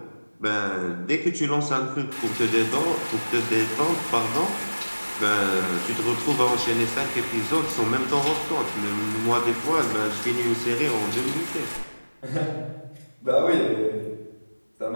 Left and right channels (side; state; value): both; inverted; correlation -1.00